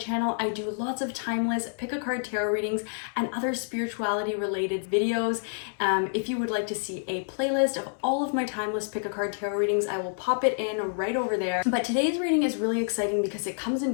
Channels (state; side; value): silent; right; 59 dB below the other